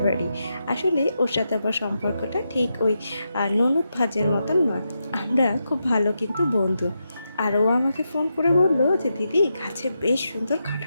বাড়ি। আসলে ওর সাথে আমার সম্পর্কটা ঠিক ওই ননদ ভাজের মতন নয়, আমরা খুব ভালো কিন্তু বন্ধু। আর ও আমাকে ফোন করে বললো যে দিদি গাছে বেশ সুন্দর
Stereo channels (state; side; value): inverted; both; correlation -0.86